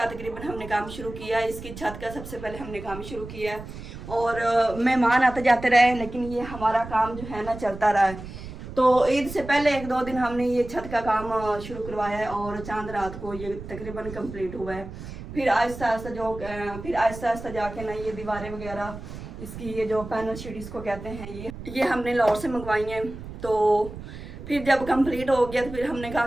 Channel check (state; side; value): noise; right; rumble, 12 dB below the sound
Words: तकरीबन हमने काम शुरू किया है। इसकी छत का सबसे पहले हमने काम शुरू किया है और मेहमान आते जाते रहे, लेकिन ये हमारा काम जो है ना चलता रहा है। तो ईद से पहले 1-2 दिन हमने ये छत का काम शुरू करवाया है और चांद रात को ये तकरीबन कंप्लीट हुआ है। फिर आहिस्ता आहिस्ता जाके ना ये दीवारें वगैरह, इसकी ये जो पैनल शीट इसको कहते हैं, ये हमने लाहौर से मंगवाई हैं। तो फिर जब कंप्लीट हो गया तो फिर हमने कहा